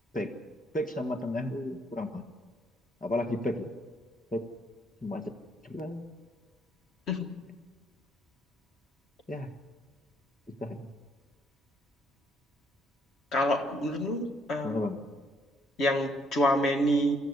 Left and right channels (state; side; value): normal; both; correlation 0.69